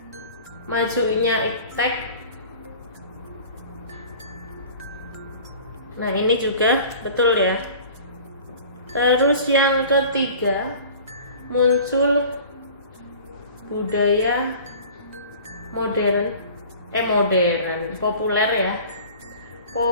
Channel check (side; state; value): both; inverted; correlation -0.43